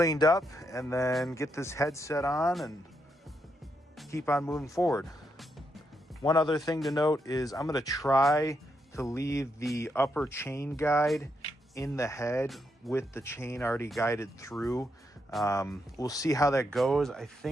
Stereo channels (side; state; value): both; normal; correlation 0.80